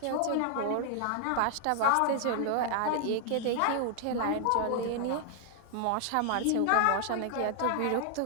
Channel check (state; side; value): different; both; correlation -0.01